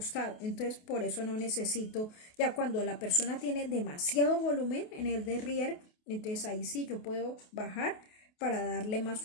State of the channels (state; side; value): late; right; 28 ms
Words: Entonces por eso no necesito, ya cuando la persona tiene demasiado volumen en el derrière, entonces ahí sí yo puedo bajar para darle más